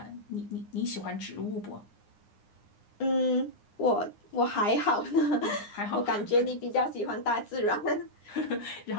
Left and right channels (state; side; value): late; right; 9.8 ms